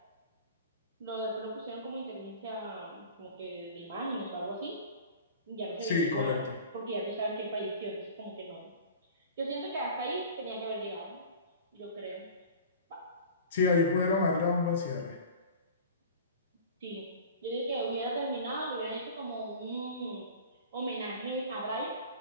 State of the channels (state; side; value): inverted; both; correlation -0.40